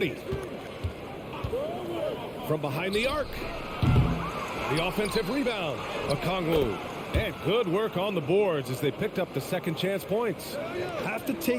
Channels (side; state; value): both; identical; correlation 1.00